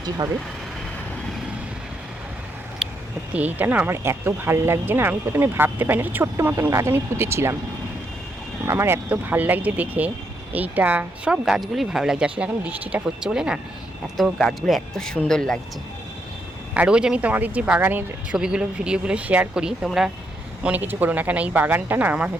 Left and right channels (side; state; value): both; normal; correlation 0.78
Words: হবে সত্যি। এইটা না আমার এত ভাল লাগছে না, আমি প্রথমে ভাবতে পারি না, একটা ছোট্ট মতন গাছ আমি পুঁতেছিলাম, আমার এত ভাল লাগছে দেখে, এইটা সব গাছগুলোই ভালো লাগছে, আসলে এখন বৃষ্টিটা হচ্ছে বলে না এত গাছগুলো এত সুন্দর লাগছে। আর রোজ আমি তোমাদের যে বাগানের ছবিগুলো ভিডিওগুলো শেয়ার করি, তোমরা মনে কিছু করো না, কেন এই বাগানটা না আমার